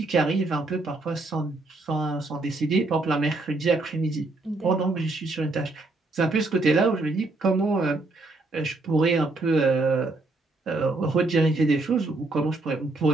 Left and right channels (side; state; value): left; quieter; 3.2 dB